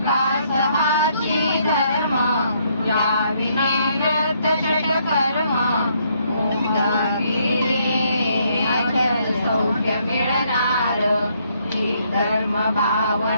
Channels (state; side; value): inverted; both; correlation -0.71